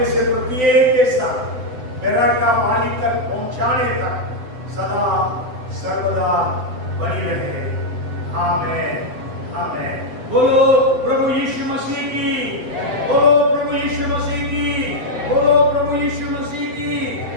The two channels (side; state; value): left; late; 7.8 ms